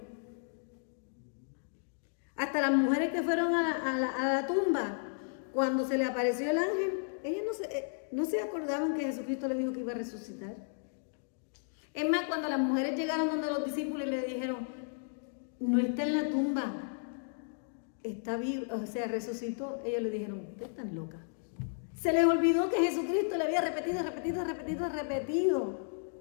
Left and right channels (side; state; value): right; silent; digital silence